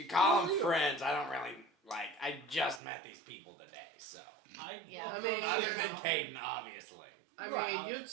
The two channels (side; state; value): left; drops out; at 2.8 s